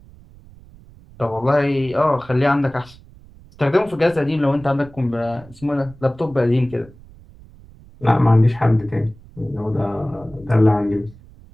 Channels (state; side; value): noise; right; rumble, 23 dB below the sound